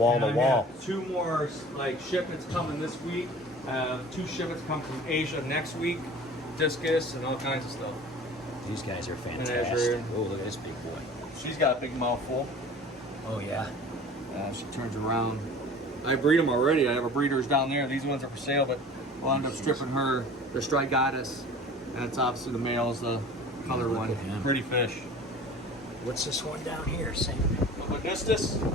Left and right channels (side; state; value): both; normal; correlation 0.42